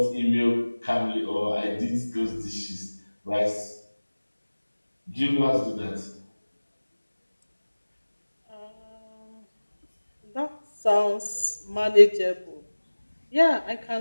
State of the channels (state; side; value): inverted; both; correlation -1.00